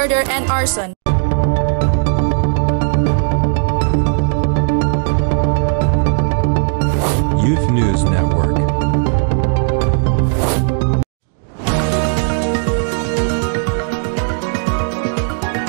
and arson. Youth News Network.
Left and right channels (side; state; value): left; silent; 62 dB below the other